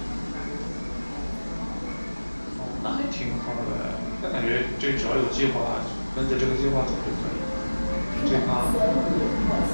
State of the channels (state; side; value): inverted; both; correlation -1.00